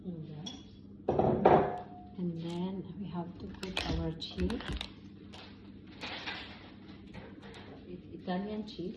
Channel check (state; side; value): identical; both; correlation 1.00